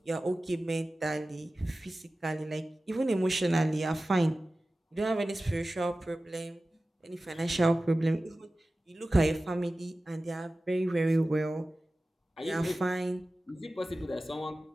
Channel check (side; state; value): both; normal; correlation 0.96